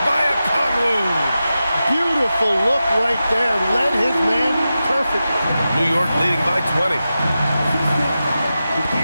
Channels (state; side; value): inverted; both; correlation -0.92